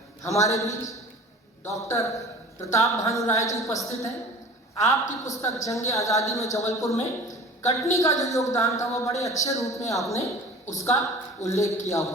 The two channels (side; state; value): both; normal; correlation 0.42